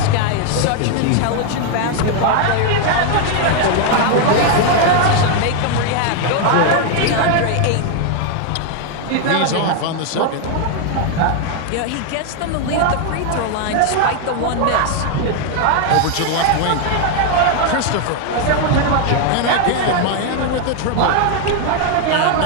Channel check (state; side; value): different; both; correlation 0.00